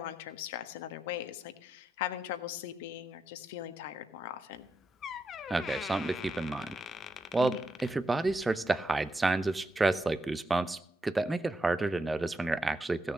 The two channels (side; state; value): both; normal; correlation 0.84